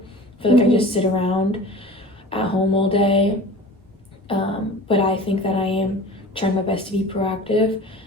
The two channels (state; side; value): normal; both; correlation 0.40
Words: I feel like I just sit around at home all day. But I think that I am trying my best to be proactive.